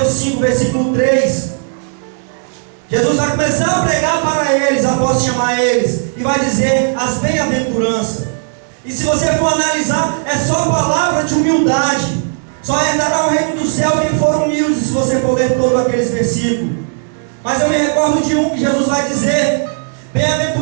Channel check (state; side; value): silent; left; digital silence